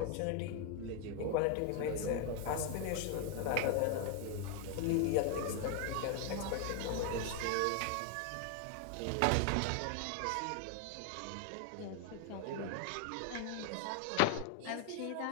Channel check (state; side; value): different; both; correlation 0.01